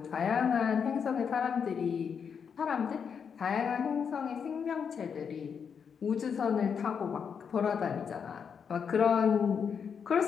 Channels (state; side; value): quieter; right; 6.8 dB